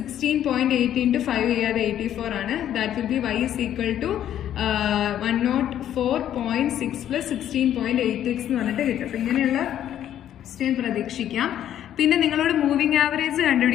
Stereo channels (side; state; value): right; quieter; 10.9 dB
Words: into 5 ചെയ്യാതെ 84 ആണ്. That will be y is equal to 104.6 plus 16.8x എന്ന് പറഞ്ഞിട്ട് കിട്ടും. അപ്പൊ ഇങ്ങനെയുള്ള ക്വസ്റ്റ്യൻ പ്രതീക്ഷിക്കാം. പിന്നെ നിങ്ങളോട് മൂവിംഗ് ആവറേജ്